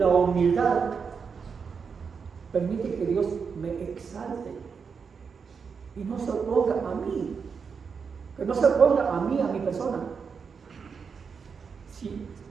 humildad permite que Dios me exalte y no se oponga a mí, que no se oponga a mí, a mi persona. Sí,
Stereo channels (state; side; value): quieter; left; 5.9 dB